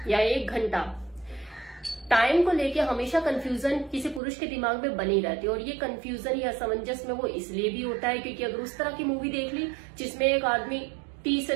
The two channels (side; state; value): left; drops out; at 4.2 s